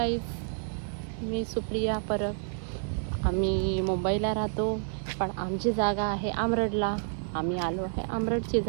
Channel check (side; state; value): left; silent; 58 dB below the other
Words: मी सुप्रिया परब. आम्ही मुंबईला राहतो, पण आमची जागा आहे आमरडला. आम्ही आलो आहे आमरडची